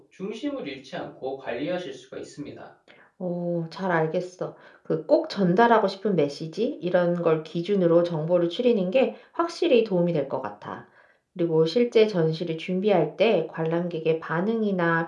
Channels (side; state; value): both; identical; correlation 1.00